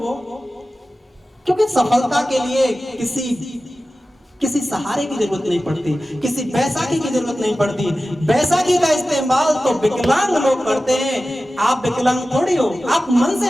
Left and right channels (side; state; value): both; normal; correlation 0.95